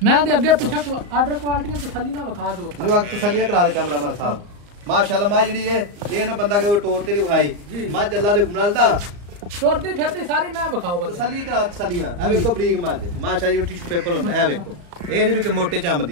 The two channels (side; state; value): left; late; 34 ms